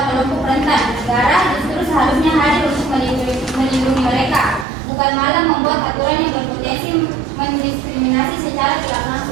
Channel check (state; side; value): drops out; left; at 4.7 s